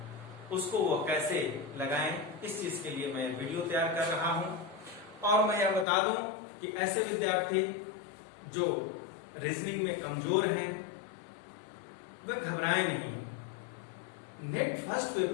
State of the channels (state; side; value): drops out; right; at 5.9 s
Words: उसको वो कैसे लगाएं, इस चीज के लिए मैं वीडियो तैयार कर रहा हूं। और मैं यह बता दूं कि ऐसे विद्यार्थी जो रीजनिंग में कमजोर हैं वह घबराएं नहीं। नेट फर्स्ट